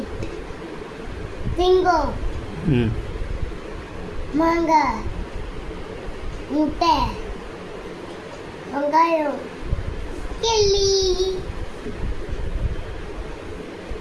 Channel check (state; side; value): identical; both; correlation 1.00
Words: சிங்கம், ம் மாங்காய், முட்டை, வெங்காயம், கிள்ளி,